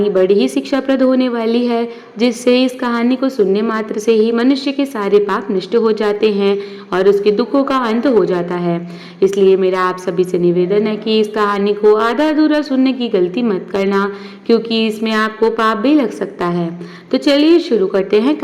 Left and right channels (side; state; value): both; identical; correlation 1.00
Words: बड़ी ही शिक्षाप्रद होने वाली है, जिससे इस कहानी को सुनने मात्र से ही मनुष्य के सारे पाप नष्ट हो जाते हैं और उसके दुखों का अंत हो जाता है। इसलिए मेरा आप सभी से निवेदन है कि इस कहानी को आधा अधूरा सुनने की गलती मत करना, क्योंकि इसमें आपको पाप भी लग सकता है। तो चलिए शुरू करते हैं